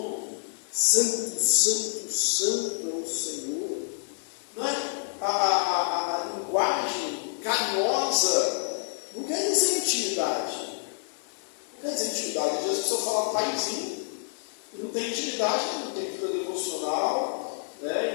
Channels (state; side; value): silent; right; digital silence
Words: Santo, santo, santo é o Senhor. Não é? A linguagem carinhosa não quer dizer intimidade. Não quer dizer intimidade. Às vezes a pessoa fala paizinho e não tem intimidade, não tem vida devocional, né?